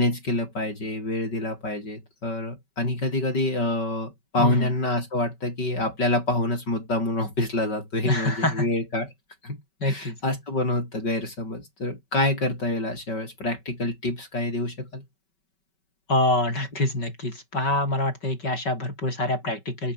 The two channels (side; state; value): right; late; 5.3 ms